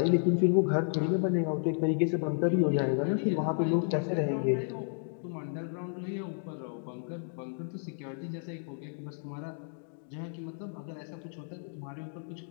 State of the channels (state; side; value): silent; right; digital silence